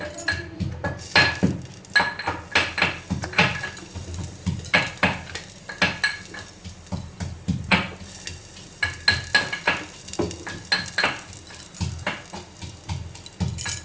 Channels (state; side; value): identical; both; correlation 1.00